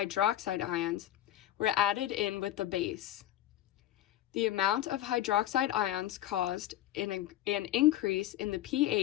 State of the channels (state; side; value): quieter; right; 13.2 dB